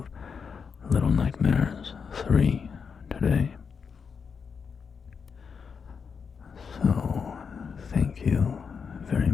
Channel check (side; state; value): right; quieter; 6.0 dB